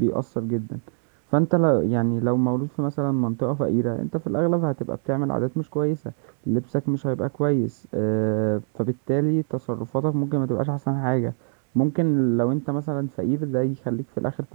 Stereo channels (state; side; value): silent; left; digital silence